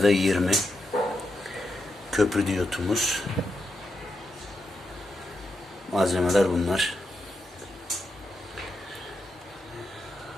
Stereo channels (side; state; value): both; normal; correlation 0.85